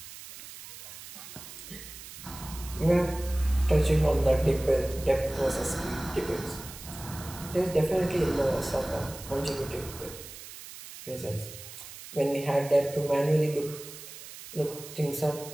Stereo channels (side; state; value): right; noise; hiss, 14 dB below the sound